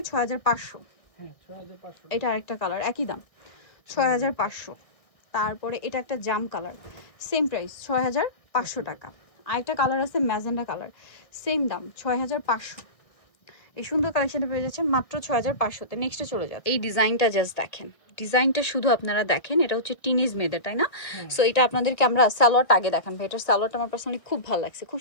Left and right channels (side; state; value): right; late; 1.6 ms